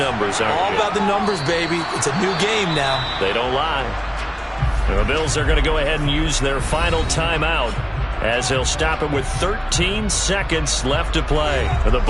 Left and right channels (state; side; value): identical; both; correlation 1.00